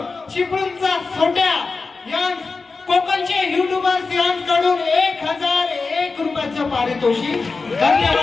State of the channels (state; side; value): quieter; right; 4.2 dB